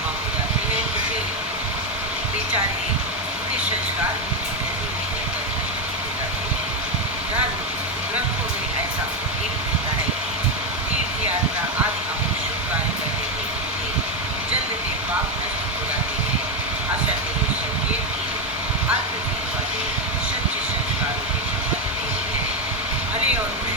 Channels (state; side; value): normal; both; correlation 0.06